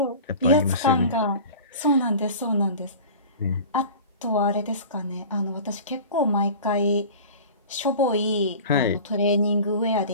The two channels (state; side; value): inverted; both; correlation -0.38